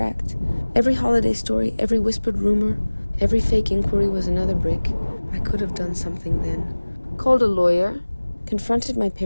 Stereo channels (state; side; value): inverted; both; correlation -1.00